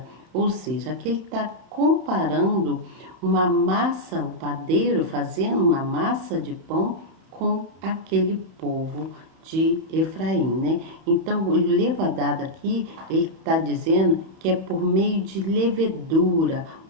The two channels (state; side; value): late; left; 31 ms